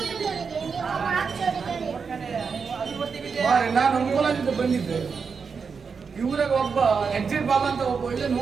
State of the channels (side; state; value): left; quieter; 5.6 dB